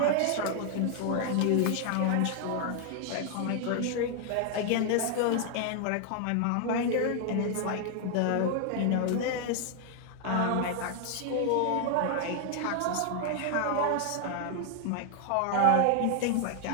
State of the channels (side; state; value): both; different; correlation 0.00